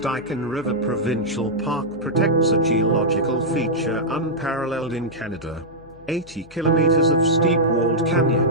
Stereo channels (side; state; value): left; noise; hum, 25 dB below the sound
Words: River Provincial Park protects a geological feature unparalleled in Canada. 80 kilometers of steep-walled